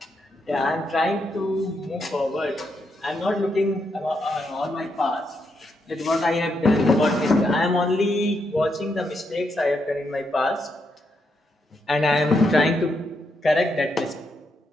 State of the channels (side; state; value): both; normal; correlation 0.80